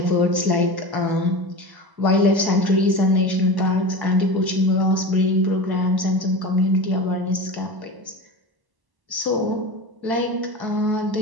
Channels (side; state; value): left; late; 1.0 ms